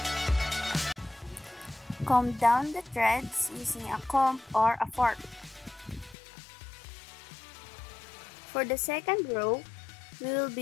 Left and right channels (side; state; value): right; drops out; at 6.2 s